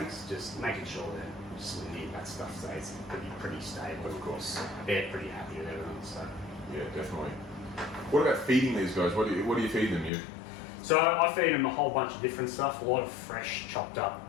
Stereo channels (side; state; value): right; drops out; at 10.1 s